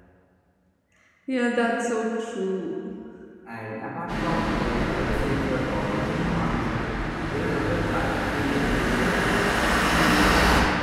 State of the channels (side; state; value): both; identical; correlation 1.00